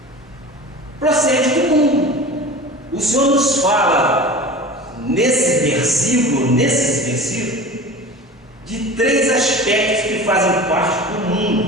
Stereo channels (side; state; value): both; normal; correlation 0.36